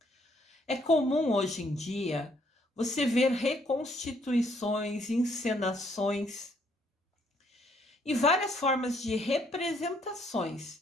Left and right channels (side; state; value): both; normal; correlation 0.68